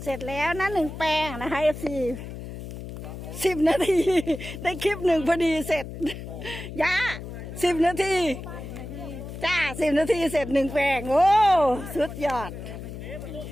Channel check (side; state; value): left; noise; hum, 10 dB below the sound